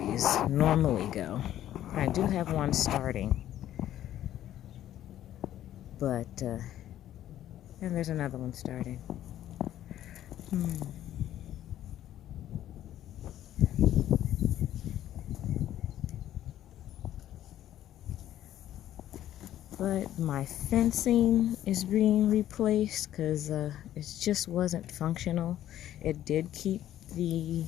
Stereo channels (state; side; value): quieter; right; 12.3 dB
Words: normally go. I do have one starting, but and there's another one starting. But my fencing is being replaced because it just wasn't functional. It did keep the